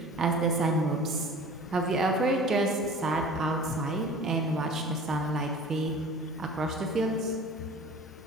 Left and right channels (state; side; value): normal; both; correlation 0.42